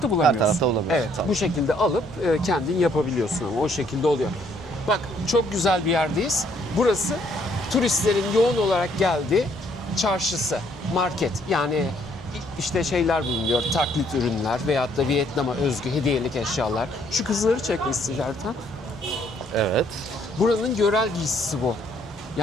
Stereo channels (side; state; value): both; normal; correlation 0.66